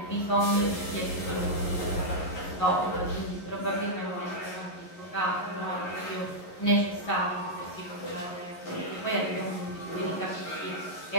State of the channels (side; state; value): right; late; 11 ms